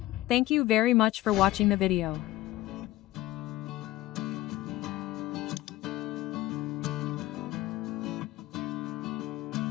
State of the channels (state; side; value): quieter; right; 16.5 dB